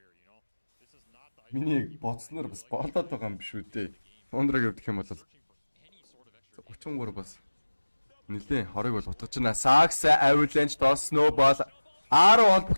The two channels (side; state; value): both; inverted; correlation -1.00